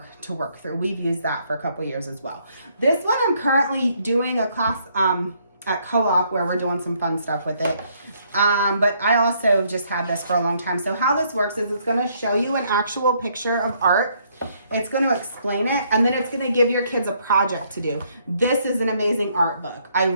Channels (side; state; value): both; inverted; correlation -0.69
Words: to work through. We've used that for a couple years as well. This one I'm currently doing a class at co-op where we're doing some fun stuff with it. But I also just had this for a long time. So how this works is it's going to show you an actual picture of art. It's going to explain it, and then it's going to give your kids a project to do. This is an amazing art book. I